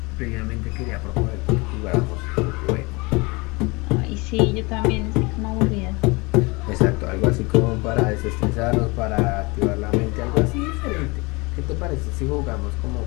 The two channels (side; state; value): right; quieter; 26.1 dB